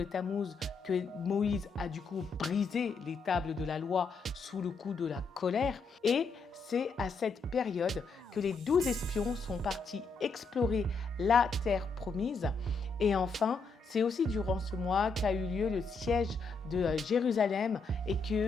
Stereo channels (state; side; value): quieter; right; 4.3 dB